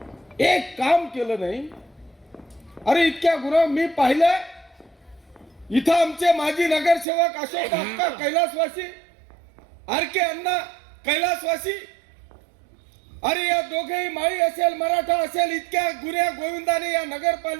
एक काम केलं नाही. अरे इतक्या गुन्हा मी पाहिलं. इथं आमचे माजी नगरसेवक अशोक अक्का कैलासवासी, आरके अण्णा कैलासवासी. अरे या दोघेही माळी असेल, मराठा असेल, इतक्या गुन्ह्या गोविंदाने या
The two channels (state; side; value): drops out; left; at 7.1 s